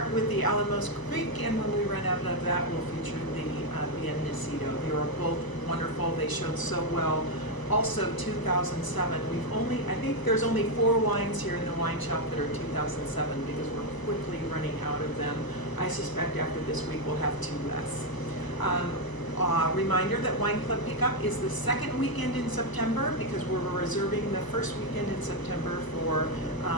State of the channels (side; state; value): right; late; 1.0 ms